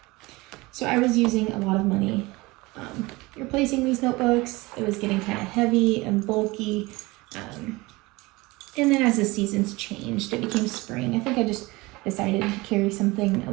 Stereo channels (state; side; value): quieter; left; 22.4 dB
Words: So I was using a lot of money replacing these notebooks. It was getting kind of heavy and bulky. And then as the seasons changed, it became spring. I think I just decided to carry something a